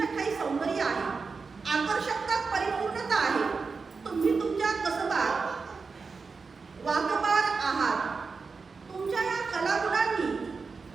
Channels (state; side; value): quieter; left; 4.7 dB